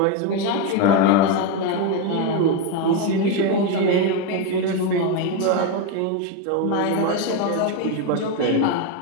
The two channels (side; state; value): both; different; correlation 0.02